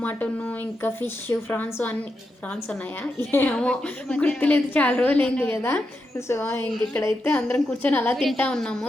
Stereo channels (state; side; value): normal; both; correlation 0.86